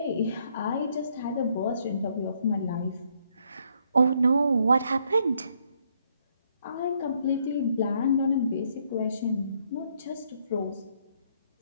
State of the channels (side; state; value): both; inverted; correlation -0.71